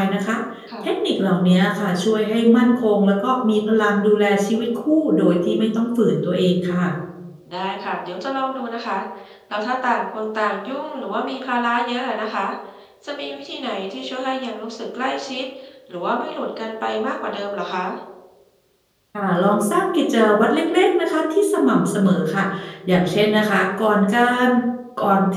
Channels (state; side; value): identical; both; correlation 1.00